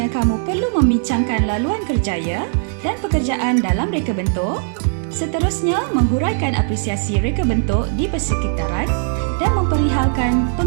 kamu perlu membincangkan laluan kerjaya dan pekerjaan dalam reka bentuk, seterusnya menghuraikan apresiasi reka bentuk di persekitaran dan memperihalkan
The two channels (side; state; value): left; silent; digital silence